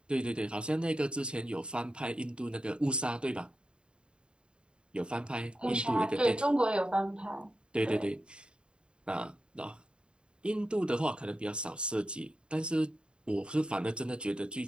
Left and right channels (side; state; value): left; late; 0.052 ms